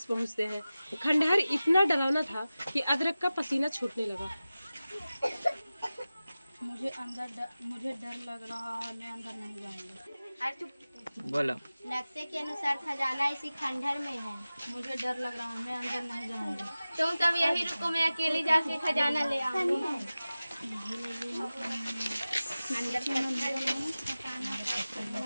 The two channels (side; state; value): both; inverted; correlation -0.96